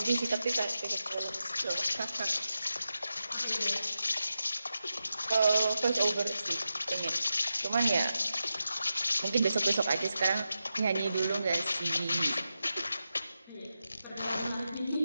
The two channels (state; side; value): inverted; both; correlation -0.90